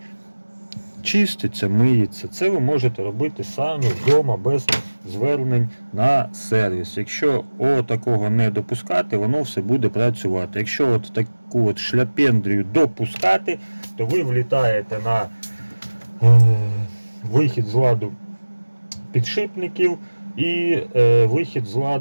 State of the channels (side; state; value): both; inverted; correlation -1.00